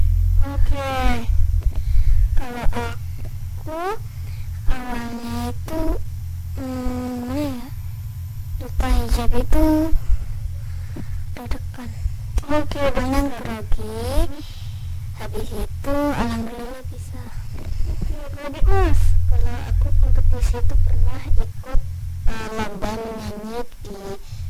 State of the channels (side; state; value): both; identical; correlation 1.00